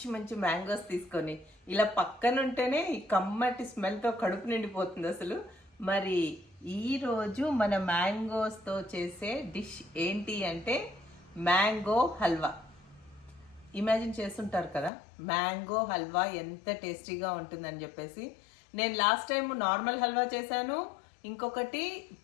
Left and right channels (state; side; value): drops out; right; at 14.9 s